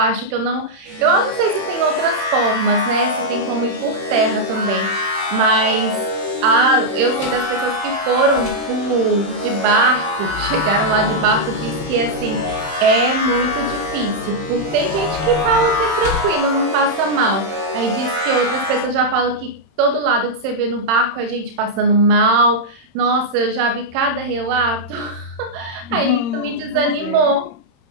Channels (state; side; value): late; left; 31 ms